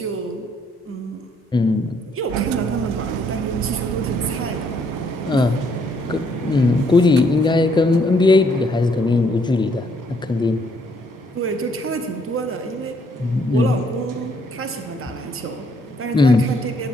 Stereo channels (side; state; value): both; normal; correlation 0.69